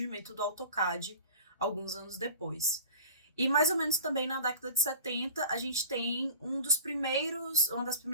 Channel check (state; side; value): inverted; both; correlation -0.40